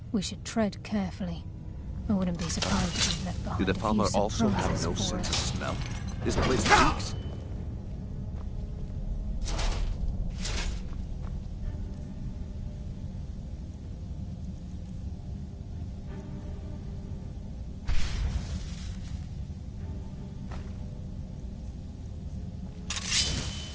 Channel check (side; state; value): both; identical; correlation 1.00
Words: We should tread carefully. I wouldn't be surprised if we've left behind Do the a few farmer also have surprises no for sense of us. smell? This place stinks.